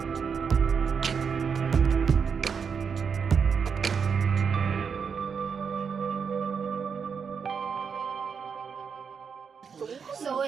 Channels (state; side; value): quieter; left; 6.3 dB